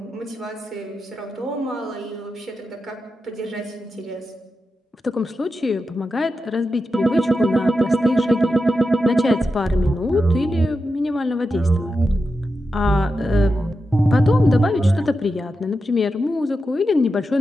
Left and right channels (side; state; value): both; normal; correlation 0.89